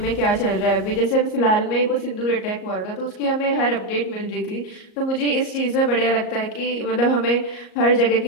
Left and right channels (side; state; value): right; late; 38 ms